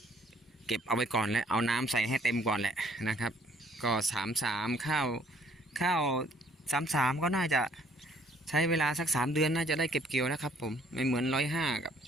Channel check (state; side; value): normal; both; correlation 0.61